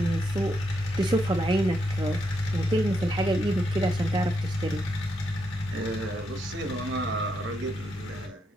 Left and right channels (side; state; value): both; normal; correlation 0.80